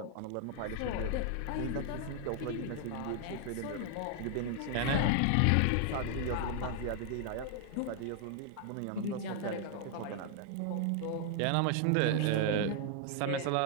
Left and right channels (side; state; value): both; different; correlation 0.00